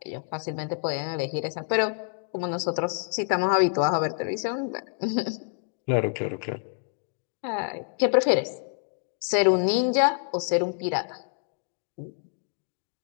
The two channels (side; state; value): right; silent; digital silence